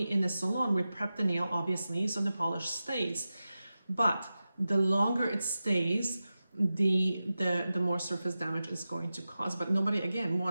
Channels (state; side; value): inverted; both; correlation -0.94